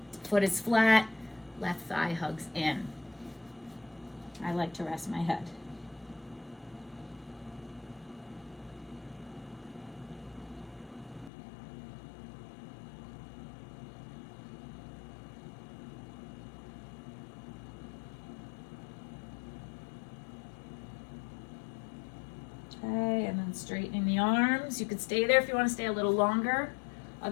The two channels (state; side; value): drops out; right; at 11.3 s